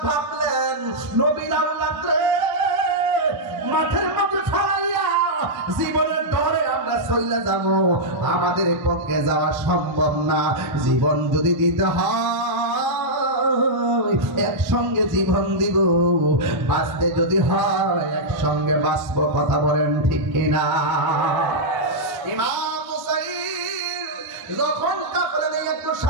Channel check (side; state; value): left; late; 1.0 ms